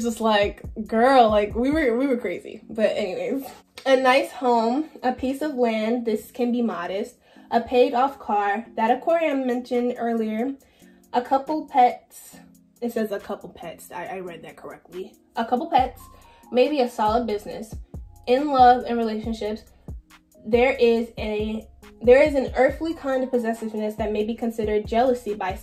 just like, girl, like we were crazy. But anyways, a nice home, a piece of land, this can be modest, a paid off car, that aquarium mentioned earlier, a couple pets. It says a couple pets. I read that correctly. A couple pets, maybe a solid business. In love and relationships, there is an earthly kind of possessiveness that may be considered jealousy by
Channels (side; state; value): both; identical; correlation 1.00